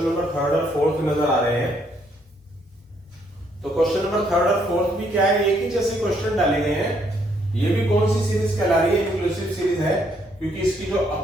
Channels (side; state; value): both; normal; correlation 0.70